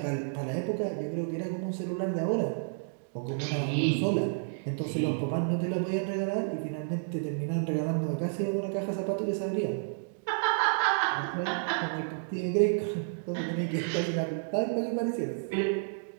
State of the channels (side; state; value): left; silent; digital silence